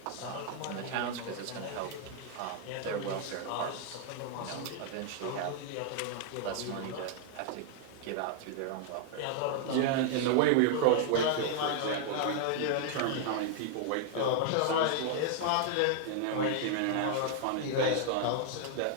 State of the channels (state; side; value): different; both; correlation -0.01